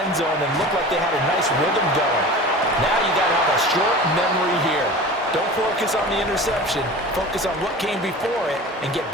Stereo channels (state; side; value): normal; both; correlation 0.36